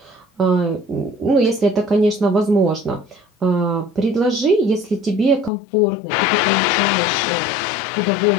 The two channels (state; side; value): drops out; right; at 5.5 s